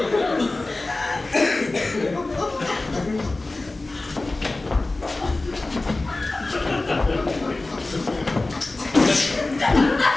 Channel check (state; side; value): quieter; right; 3.1 dB